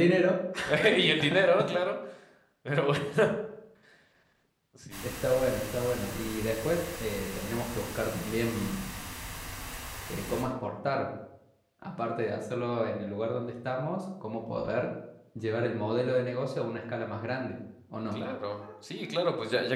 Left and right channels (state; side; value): identical; both; correlation 1.00